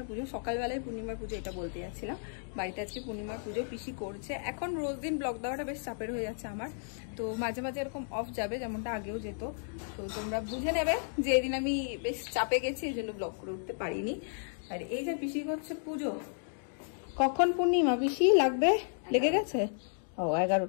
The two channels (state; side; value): silent; right; digital silence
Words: পুজো। সকালবেলায় পূর্ণিমার পুজো এটা বলতে যাচ্ছিলাম। বাড়িতে আজকে পূর্ণিমার পুজো পিসি করছে। এখন রোজ দিন ব্লগ দেওয়াটা বেশ চাপের হয়ে যাচ্ছে আমার, তো মাঝে মাঝে এরকম অফ যাবে, যেমনটা আগেও যেত। তো তোমরা বুঝে নেবে যে এদিন আমি বেশ চাপে গেছি, এই জন্য ব্লগ করে উঠতে পারিনি। আর এই যে পিসি করছে পুজো। কখন পূর্ণিমা পিসি লাগবে? লেগে গেছে? ও